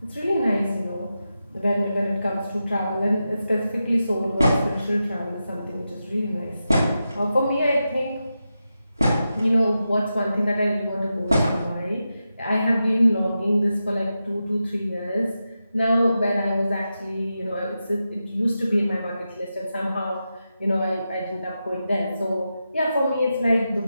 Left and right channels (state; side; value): inverted; both; correlation -0.90